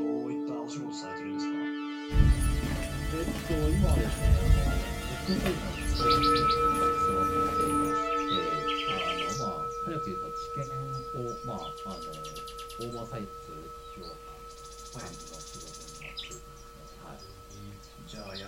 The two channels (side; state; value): both; identical; correlation 1.00